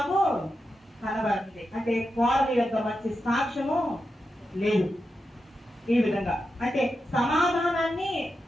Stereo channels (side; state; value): both; normal; correlation 0.88